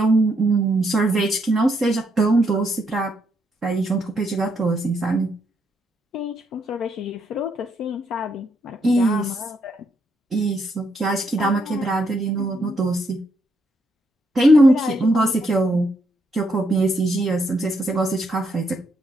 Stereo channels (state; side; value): normal; both; correlation 0.76